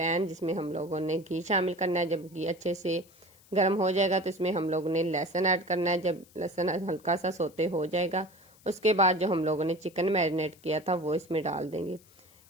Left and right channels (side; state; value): left; noise; hiss, 27 dB below the sound